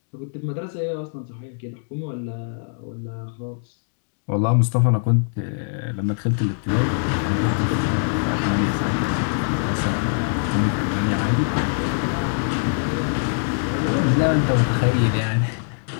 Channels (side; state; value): right; silent; digital silence